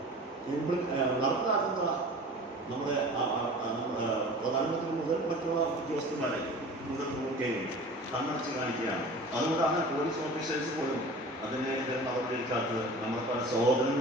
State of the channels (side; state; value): both; normal; correlation 0.40